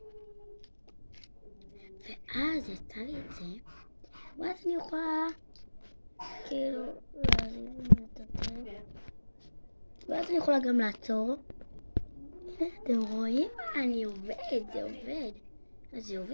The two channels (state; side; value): inverted; both; correlation -1.00